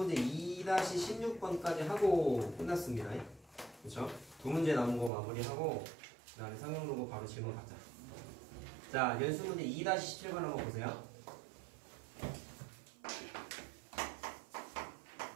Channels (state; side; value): drops out; left; at 5.1 s